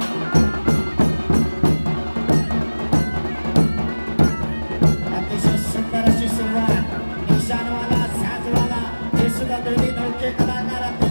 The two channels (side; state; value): both; inverted; correlation -1.00